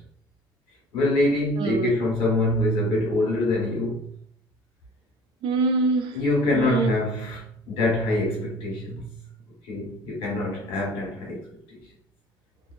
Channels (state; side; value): normal; both; correlation 0.48